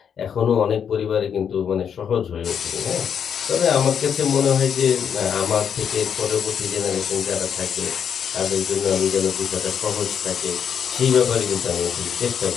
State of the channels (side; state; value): right; quieter; 7.8 dB